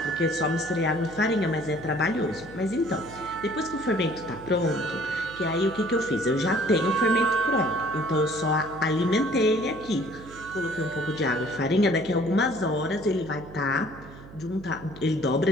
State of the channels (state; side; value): noise; right; hum, 17 dB below the sound